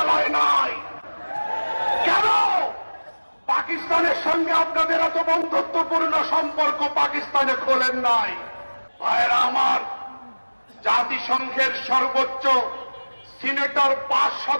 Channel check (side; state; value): both; inverted; correlation -1.00